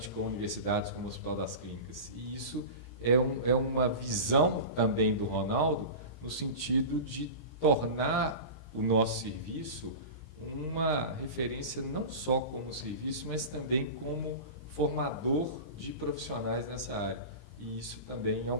com universidades, como o Hospital das Clínicas. E isso é uma visão também do Ronaldo, no sentido de tornar o nosso serviço uma referência não só como serviço, mas também como formador de profissionais nessa área. E isso também é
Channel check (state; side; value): late; right; 17 ms